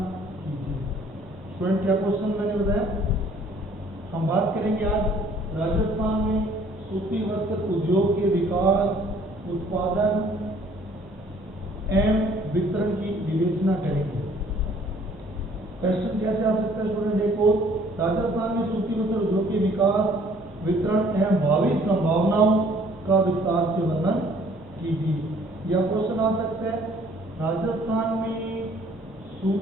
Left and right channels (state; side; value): normal; both; correlation 0.58